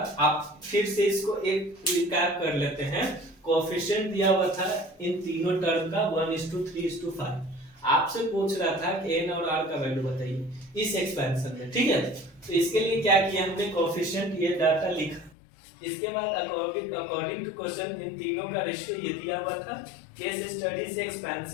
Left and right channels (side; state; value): right; drops out; at 15.3 s